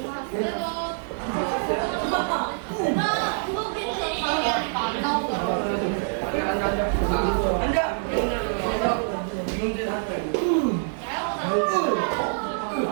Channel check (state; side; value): silent; left; 61 dB below the other